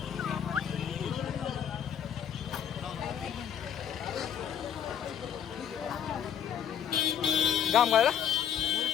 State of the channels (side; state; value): right; quieter; 8.9 dB